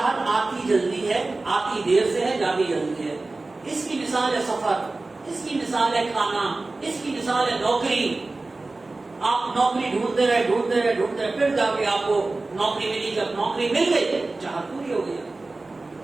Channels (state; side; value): quieter; left; 3.3 dB